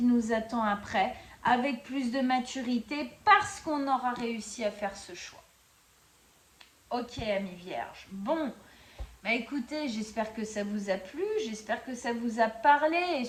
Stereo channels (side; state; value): both; identical; correlation 1.00